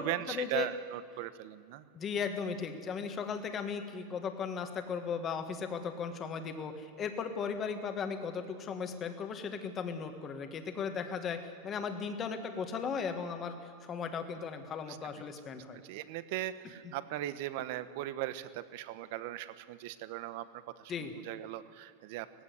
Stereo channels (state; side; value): normal; both; correlation 0.34